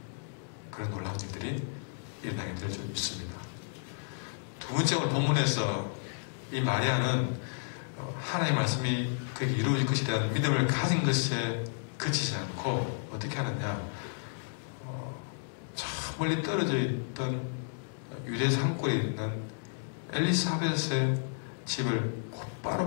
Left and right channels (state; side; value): silent; right; digital silence